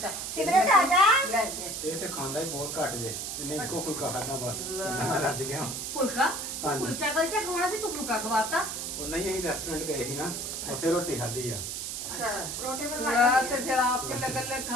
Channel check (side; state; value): right; noise; hiss, 5 dB below the sound